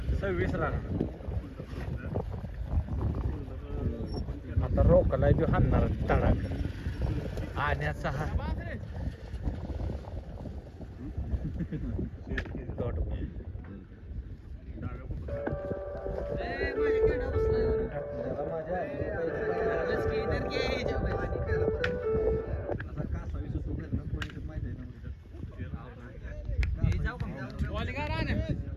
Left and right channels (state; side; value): identical; both; correlation 1.00